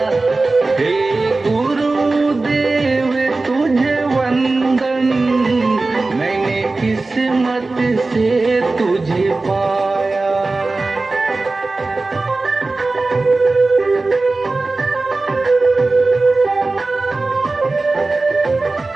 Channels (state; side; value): quieter; left; 3.4 dB